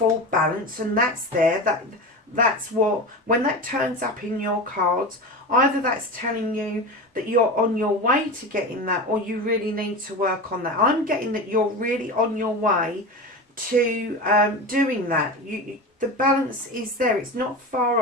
balance. And that's there. That's what, when that turns up in your cards, either that's telling you that you're on your way to getting that, or you really need to work on that. I'm getting that you're really on your way to doing that. The balance is there. It's not far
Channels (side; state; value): both; normal; correlation 0.26